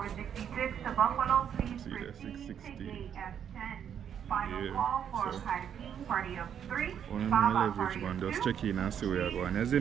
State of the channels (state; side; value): quieter; left; 8.6 dB